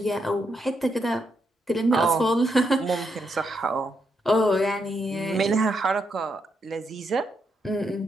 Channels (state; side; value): normal; both; correlation 0.80